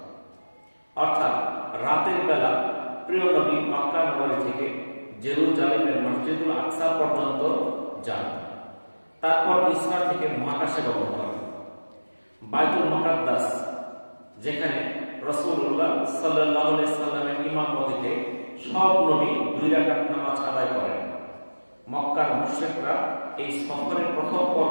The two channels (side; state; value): both; inverted; correlation -1.00